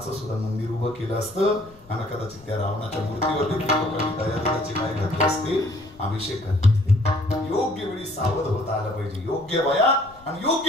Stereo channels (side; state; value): left; noise; rumble, 25 dB below the sound